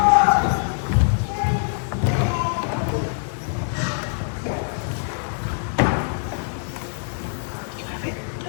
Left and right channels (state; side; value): silent; right; digital silence